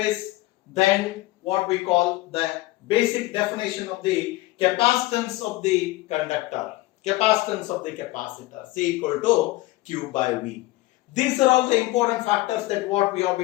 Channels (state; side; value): quieter; right; 19.0 dB